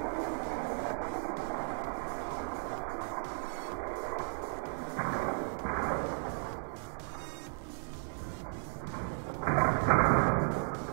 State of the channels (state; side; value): silent; left; 54 dB below the other